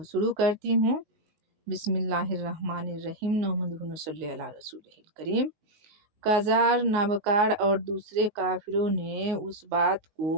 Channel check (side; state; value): left; late; 19 ms